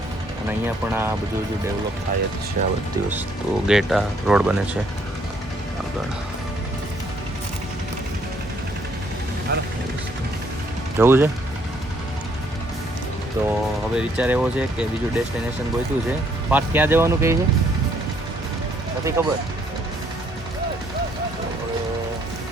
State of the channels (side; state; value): both; normal; correlation 0.67